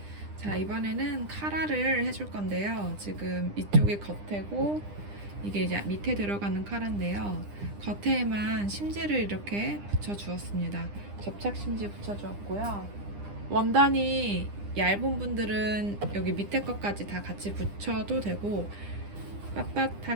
자, 이번에는 카라를 해줄 건데요. 지금 이쪽이 겉에고 이게 이제 밑에 들어가는 카라인데요. 겉에만 심지를 이렇게 붙여 주었습니다. 접착 심지 붙여 주었고요. 원단이 얇은 분들은 여기 밑에 것까지 다 같이 붙여도 되고,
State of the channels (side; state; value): left; late; 9.9 ms